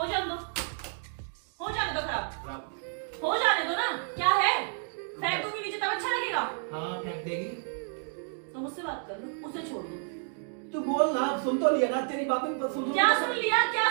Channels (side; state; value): left; silent; 55 dB below the other